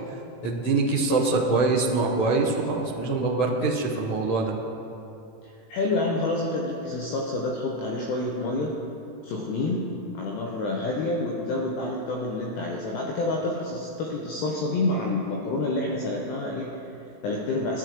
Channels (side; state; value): right; late; 18 ms